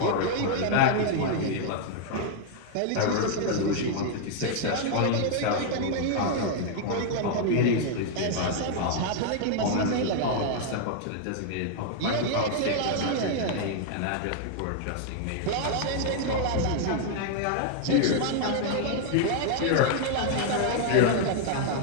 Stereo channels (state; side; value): different; both; correlation -0.01